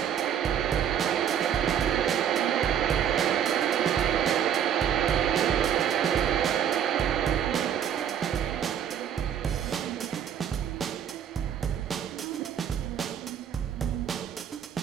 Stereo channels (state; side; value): quieter; left; 9.1 dB